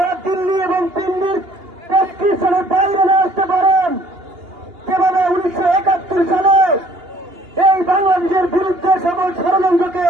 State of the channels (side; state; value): left; late; 2.8 ms